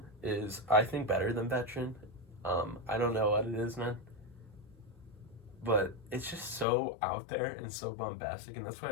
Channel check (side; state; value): right; drops out; at 6.7 s